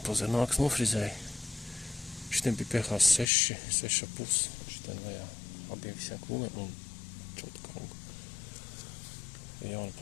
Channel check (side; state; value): right; drops out; at 3.3 s